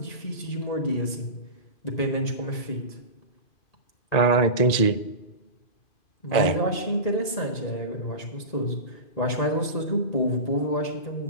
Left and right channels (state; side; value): late; right; 2.5 ms